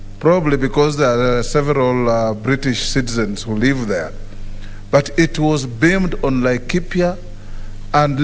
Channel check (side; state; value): both; identical; correlation 1.00